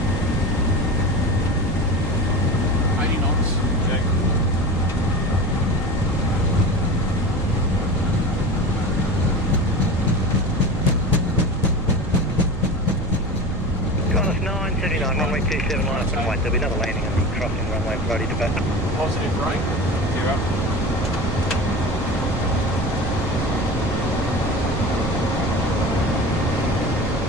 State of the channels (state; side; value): noise; right; rumble, 5 dB below the sound